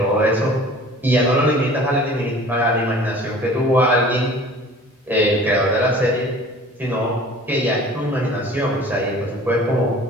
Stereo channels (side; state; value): both; normal; correlation 0.46